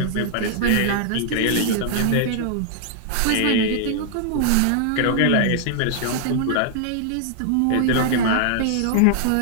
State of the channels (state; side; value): different; both; correlation -0.01